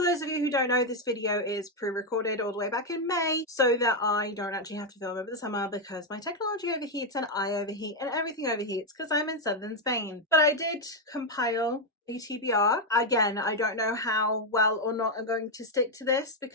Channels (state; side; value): normal; both; correlation 0.03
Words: those of you who don't know, this video is pre-recorded all the way back in May so that I don't actually have to film over the summer because my technology overheats and I overheat and everything overheats because I'm in southern Spain. But I did compile a TBR. Again, I don't know how well or not I'm going to stick to this